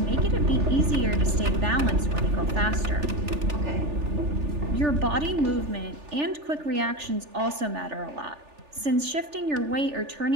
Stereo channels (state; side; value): late; left; 3.4 ms